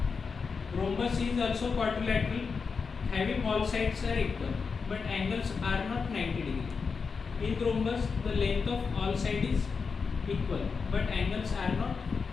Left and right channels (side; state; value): right; quieter; 5.2 dB